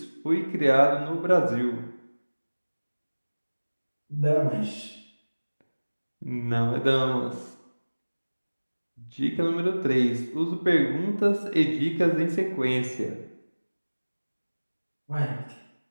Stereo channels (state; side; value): inverted; both; correlation -1.00